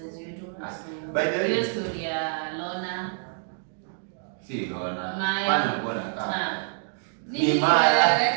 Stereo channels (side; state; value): left; silent; digital silence